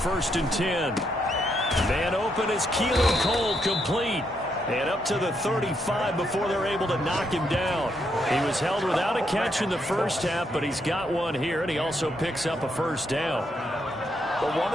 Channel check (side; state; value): both; normal; correlation 0.77